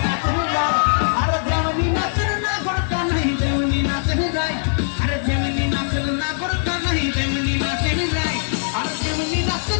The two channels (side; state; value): right; silent; 65 dB below the other